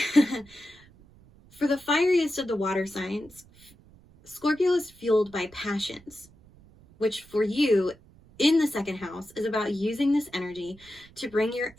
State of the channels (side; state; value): right; noise; rumble, 26 dB below the sound